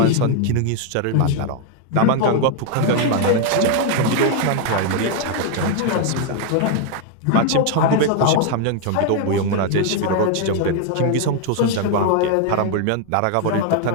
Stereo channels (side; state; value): both; different; correlation 0.00